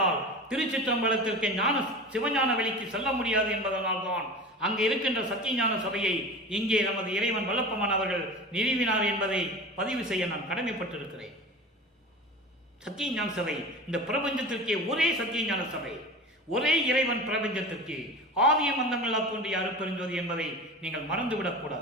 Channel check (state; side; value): normal; both; correlation 0.33